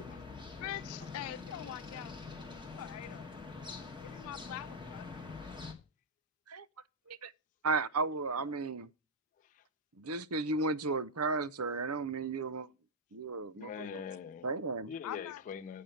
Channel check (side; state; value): both; normal; correlation -0.03